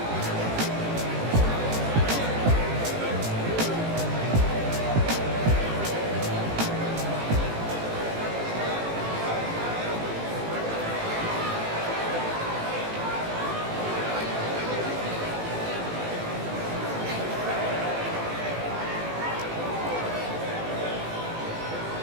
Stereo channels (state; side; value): late; left; 18 ms